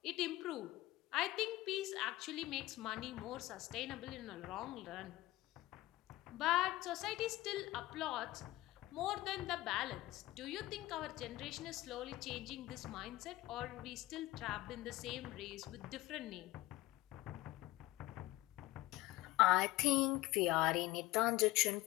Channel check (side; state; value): right; quieter; 18.1 dB